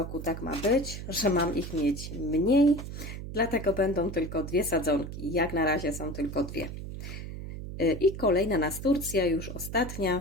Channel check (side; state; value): right; noise; hum, 8 dB below the sound